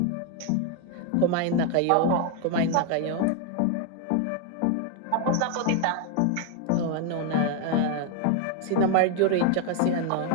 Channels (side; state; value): both; different; correlation 0.01